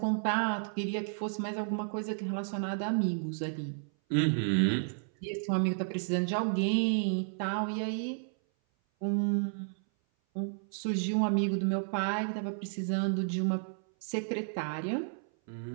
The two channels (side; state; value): left; silent; 56 dB below the other